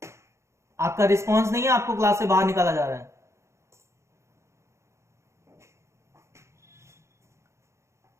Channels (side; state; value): left; late; 0.14 ms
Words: आपका रिस्पॉन्स नहीं है, आपको क्लास से बाहर निकाला जा रहा है।